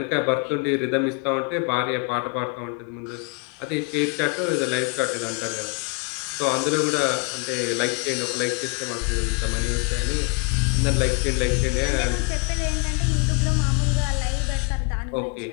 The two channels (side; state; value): right; quieter; 34.0 dB